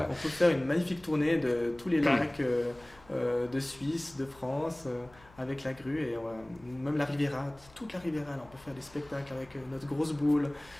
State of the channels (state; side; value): noise; left; hum, 25 dB below the sound